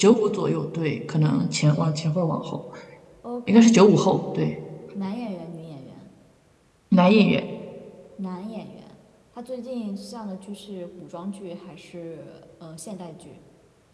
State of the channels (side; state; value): both; identical; correlation 1.00